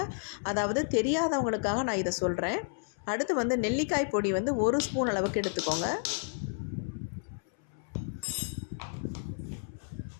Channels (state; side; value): silent; right; 57 dB below the other